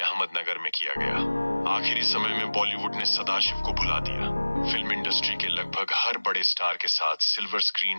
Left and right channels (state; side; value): inverted; both; correlation -1.00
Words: में किया गया। आखिरी समय में बॉलीवुड ने सदाशिव को भुला दिया। फिल्म इंडस्ट्री के लगभग हर बड़े स्टार के साथ सिल्वर स्क्रीन